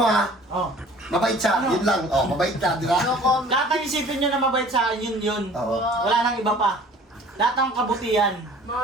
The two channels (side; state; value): both; normal; correlation 0.49